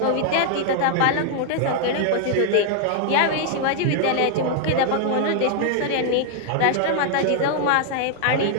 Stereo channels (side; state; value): both; different; correlation 0.00